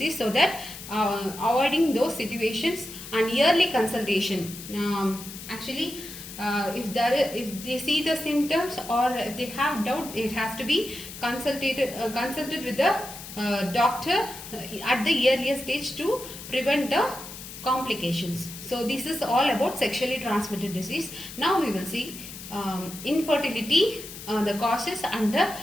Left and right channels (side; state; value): left; noise; hiss, 12 dB below the sound